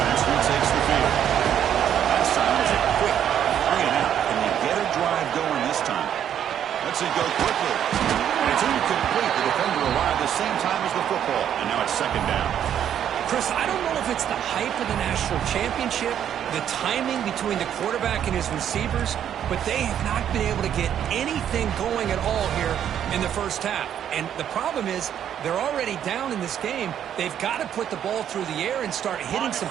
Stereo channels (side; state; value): left; quieter; 9.7 dB